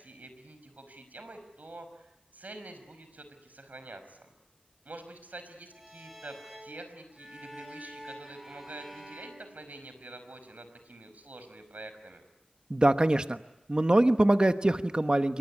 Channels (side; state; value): both; normal; correlation 0.98